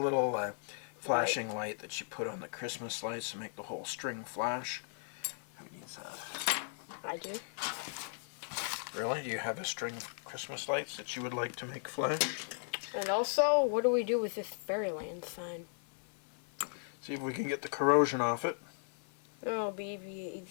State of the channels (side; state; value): right; silent; 53 dB below the other